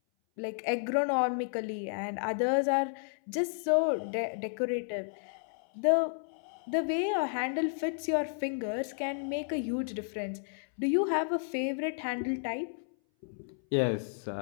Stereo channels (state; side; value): silent; right; 56 dB below the other